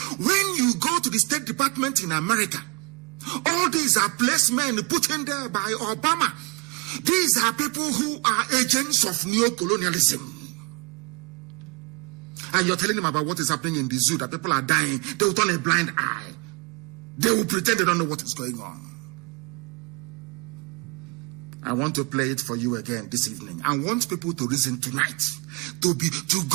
When you go to the State Department in America, all these are placements put in there by Obama. These are people who are agents of neo-colonialism. And you're telling them about what is happening in the zoo, that people are dying. They will turn a blind eye. They will pretend they don't know what is going on. I want to play it for you again this evening. I want people to reason tonight, to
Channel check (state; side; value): quieter; left; 30.8 dB